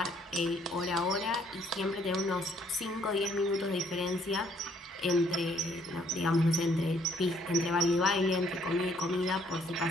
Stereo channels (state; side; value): normal; both; correlation 0.65